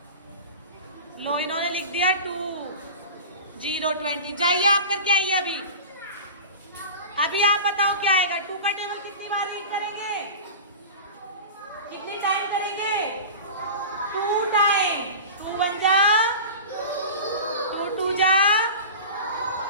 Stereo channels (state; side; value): inverted; both; correlation -0.33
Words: लो इन्होंने लिख दिया 2, 0, 20। जाइए आप करके आइए अभी आप बताओ क्या आएगा? 2 का टेबल कितनी बार रीड करेंगे? कितनी टाइम करेंगे? 2 टाइम। 2 1 जा, 2 2 जा,